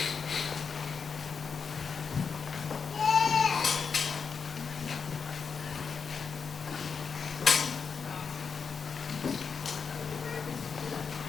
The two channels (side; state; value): right; quieter; 5.8 dB